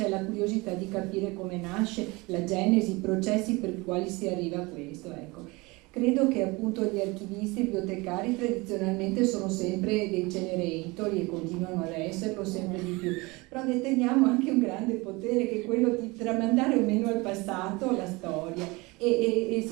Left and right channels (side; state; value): left; quieter; 24.3 dB